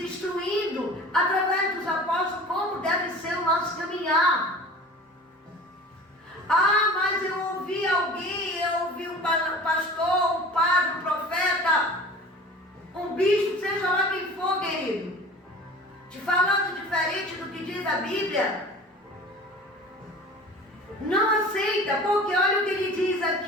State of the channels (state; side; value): normal; both; correlation 0.41